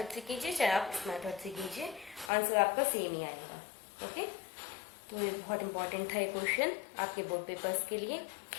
से कीजिए, चाहे आप इस मेथड से कीजिए, आंसर आपका सेम ही आएगा। ओके, तो ये बहुत इंपॉर्टेंट था ये क्वेश्चन आपके बोर्ड पेपर्स के लिए।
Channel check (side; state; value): right; drops out; at 2.3 s